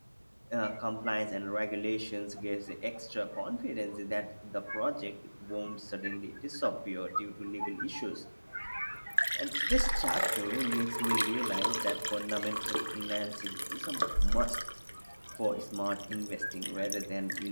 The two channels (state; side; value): inverted; both; correlation -1.00